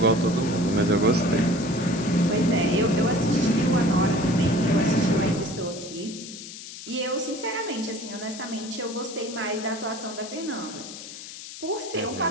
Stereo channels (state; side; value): noise; left; hiss, 12 dB below the sound